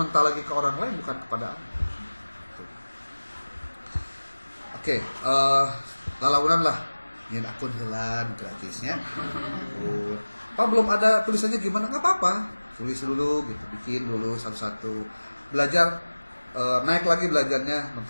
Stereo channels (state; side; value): inverted; both; correlation -1.00